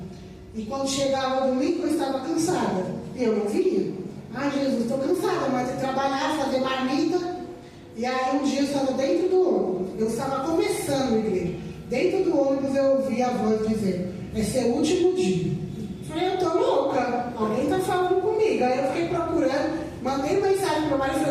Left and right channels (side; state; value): both; identical; correlation 1.00